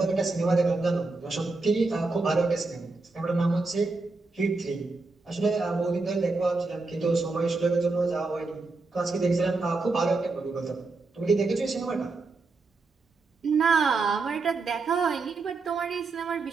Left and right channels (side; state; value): left; quieter; 3.7 dB